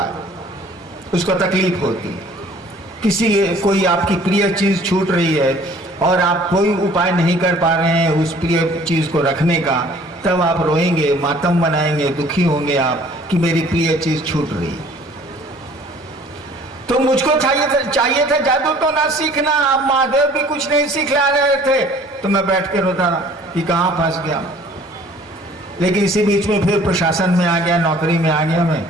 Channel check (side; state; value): both; normal; correlation 0.53